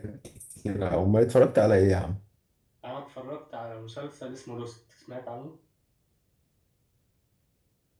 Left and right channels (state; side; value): identical; both; correlation 1.00